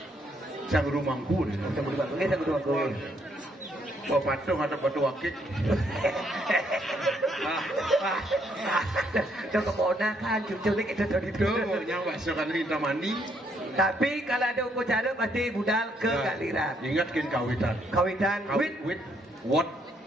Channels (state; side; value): normal; both; correlation 0.71